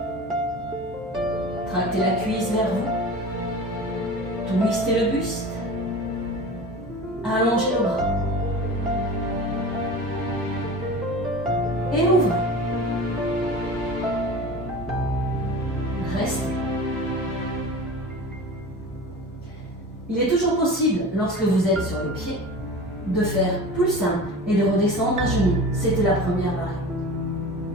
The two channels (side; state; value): both; normal; correlation 0.35